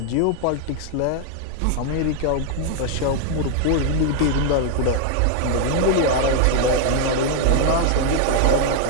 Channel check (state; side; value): different; both; correlation 0.00